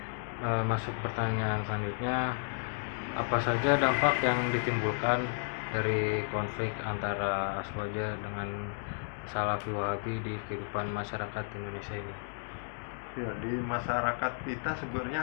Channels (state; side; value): silent; right; digital silence